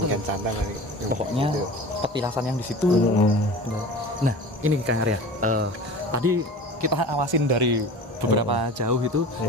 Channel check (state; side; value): normal; both; correlation 0.37